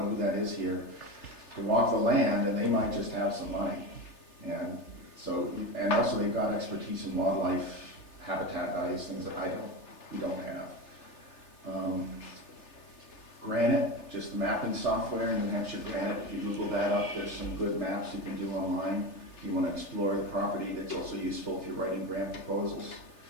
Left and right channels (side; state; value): right; late; 3.3 ms